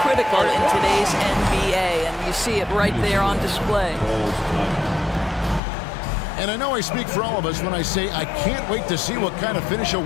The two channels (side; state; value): right; drops out; at 5.6 s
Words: critical in today's NBA, and you see it right there on display. And I know I speak for all of us when I say I can't wait to see what kind of finish